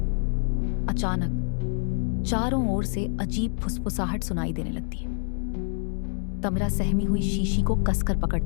अचानक चारों ओर से अजीब फुसफुसाहट सुनाई देने लगती है। तमिरा सहमी हुई शीशी को कसकर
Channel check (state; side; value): silent; right; digital silence